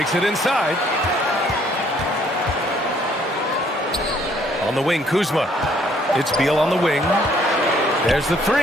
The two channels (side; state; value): both; normal; correlation 0.64